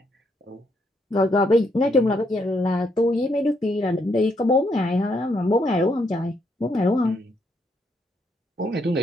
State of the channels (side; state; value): both; normal; correlation 0.75